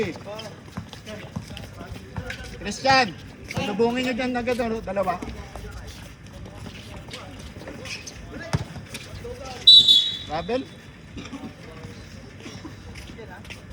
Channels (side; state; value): both; identical; correlation 1.00